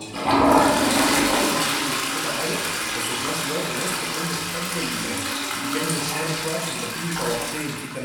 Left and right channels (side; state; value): both; identical; correlation 1.00